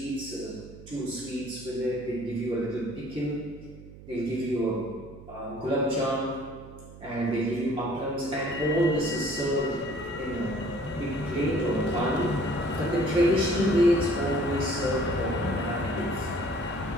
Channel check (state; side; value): noise; right; hum, 17 dB below the sound